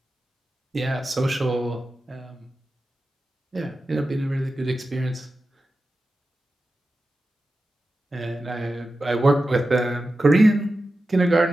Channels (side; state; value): both; normal; correlation 0.92